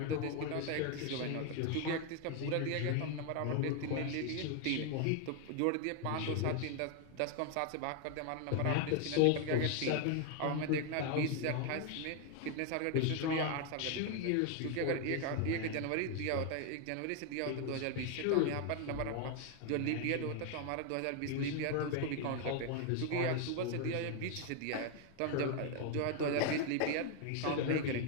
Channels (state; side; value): different; both; correlation 0.00